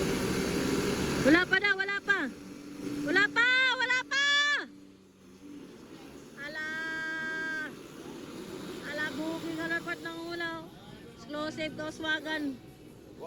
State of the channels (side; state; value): both; identical; correlation 1.00